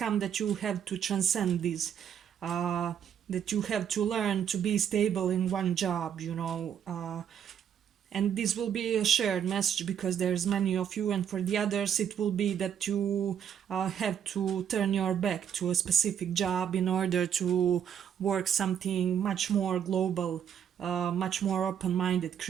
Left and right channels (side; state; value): left; quieter; 8.8 dB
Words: that you have to transcend this, that you have to learn to be stable in one job, you know. And this will be a shared message because there's many of you, and for the others it will be that you have to turn your back to a specific job in order to work something much more global, much more open-minded,